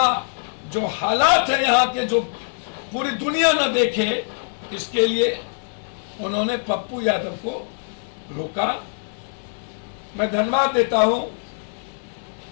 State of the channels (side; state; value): right; silent; digital silence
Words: हालात है यहाँ के जो पूरी दुनिया न देखे, इसके लिए उन्होंने पप्पू यादव को रोका। मैं धन्यवाद देता हूं